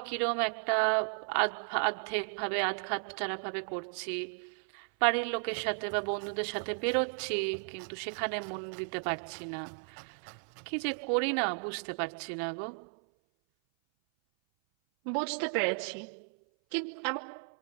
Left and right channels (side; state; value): left; silent; 55 dB below the other